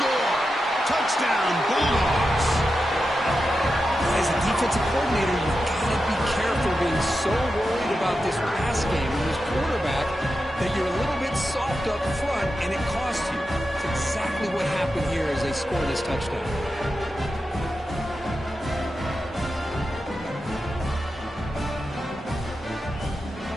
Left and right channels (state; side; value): normal; both; correlation 0.90